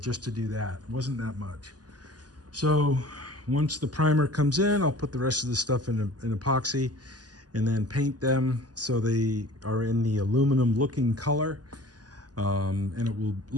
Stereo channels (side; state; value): left; late; 0.68 ms